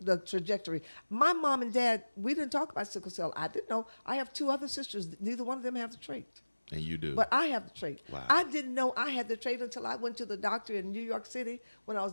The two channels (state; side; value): inverted; both; correlation -1.00